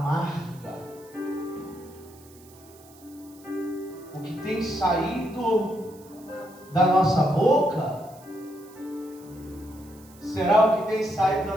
O que tem saído da nossa boca, será o que tem saído da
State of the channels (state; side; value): noise; right; hiss, 25 dB below the sound